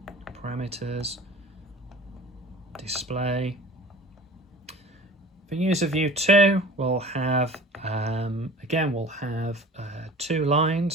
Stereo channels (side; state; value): both; normal; correlation 0.41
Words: parameters, display. For user view 2, we'll have, again, we'll have 2